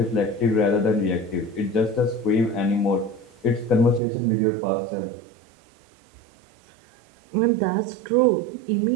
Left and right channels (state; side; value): drops out; left; at 4.0 s